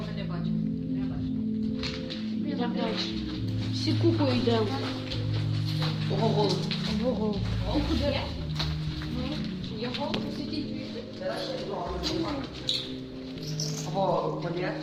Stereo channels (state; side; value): identical; both; correlation 1.00